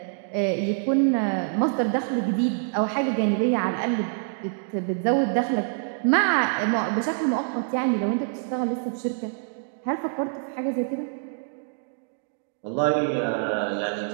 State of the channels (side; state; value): left; silent; digital silence